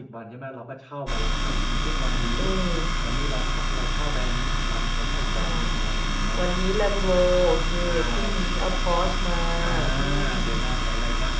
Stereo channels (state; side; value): identical; both; correlation 1.00